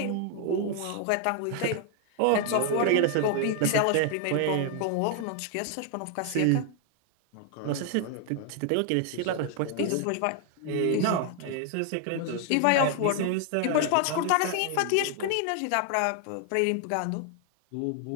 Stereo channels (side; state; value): both; different; correlation 0.00